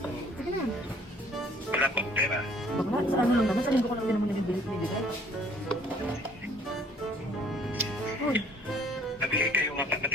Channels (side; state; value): both; normal; correlation 0.57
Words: Sige na. Wala pa akong pera. Bakla, sa ano lang naman, sa linggo ko lang din naman nabibigay. Uy. Nabigay kayo nga